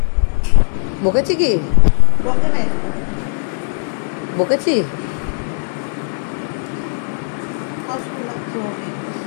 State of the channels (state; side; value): silent; right; 67 dB below the other